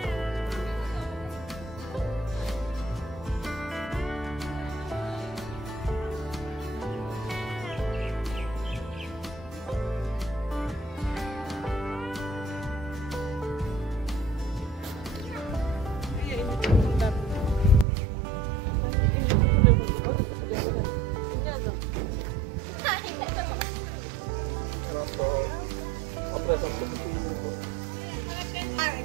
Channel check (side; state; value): left; drops out; at 17.9 s